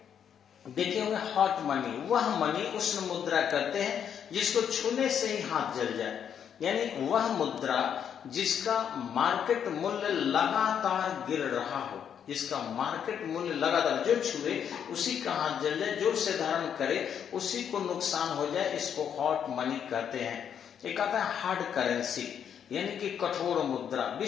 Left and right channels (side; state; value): right; quieter; 8.4 dB